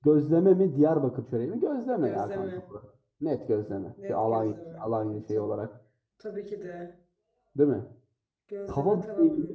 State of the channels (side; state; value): both; identical; correlation 1.00